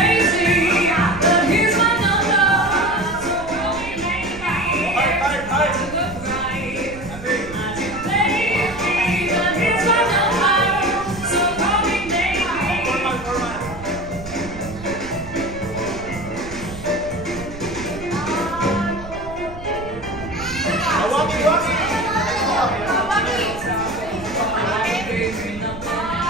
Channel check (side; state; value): right; noise; rumble, 14 dB below the sound